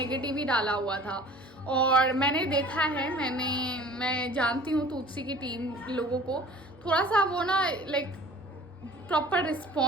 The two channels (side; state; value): both; normal; correlation 0.46